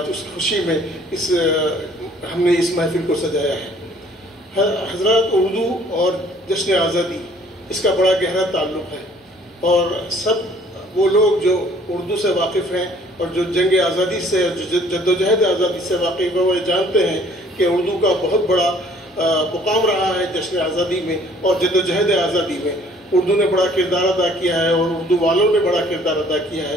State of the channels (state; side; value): normal; both; correlation 0.57